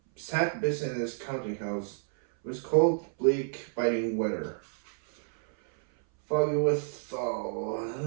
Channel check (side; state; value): left; silent; 58 dB below the other